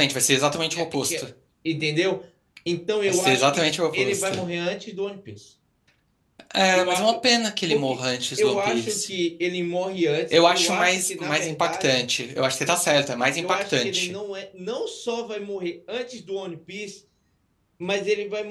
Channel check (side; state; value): both; identical; correlation 1.00